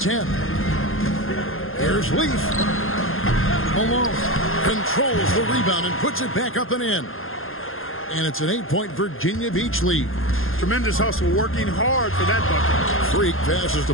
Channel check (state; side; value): late; right; 0.60 ms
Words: Here's Leaf. Malone controls the rebound and puts it back up and in. And it's an 8-point Virginia Beach lead. Tremendous hustle, working hard for that bucket. Freak passes the